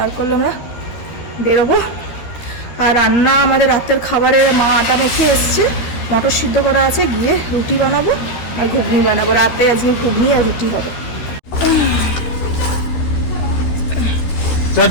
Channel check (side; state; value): right; late; 13 ms